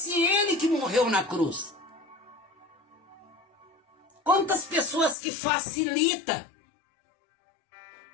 ele que morreu na cruz? Quantas pessoas que facilitam,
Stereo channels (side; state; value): right; drops out; at 5.2 s